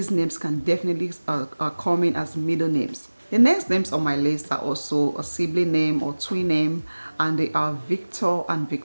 names can definitely come in as middle names. The next names on my list are also a sibling name or twin name, and they are Victor and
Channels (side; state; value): both; inverted; correlation -1.00